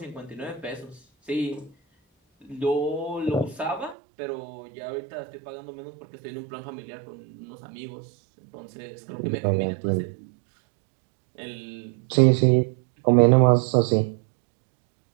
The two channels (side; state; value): left; drops out; at 4.0 s